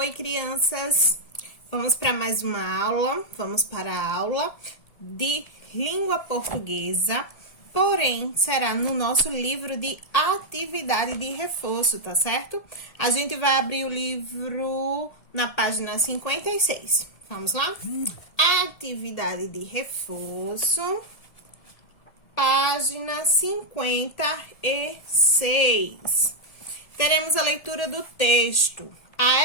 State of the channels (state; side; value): late; right; 1.7 ms